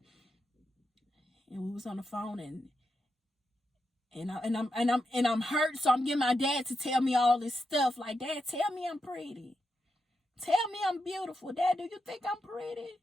and we was on the phone, and I'm hurt, so I'm getting my dad to tell me all this stuff. Like, Dad, tell me I'm pretty. Tell me I'm beautiful. Dad, do you think I'm pretty?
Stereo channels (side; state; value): both; normal; correlation 0.86